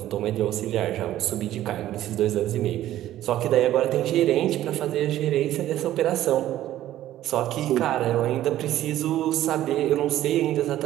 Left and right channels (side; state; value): left; quieter; 13.4 dB